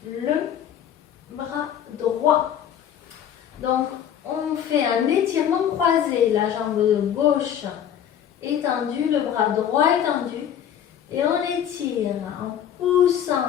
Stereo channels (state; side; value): quieter; right; 9.6 dB